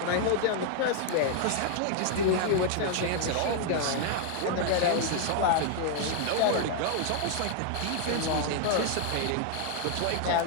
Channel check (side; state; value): both; different; correlation 0.00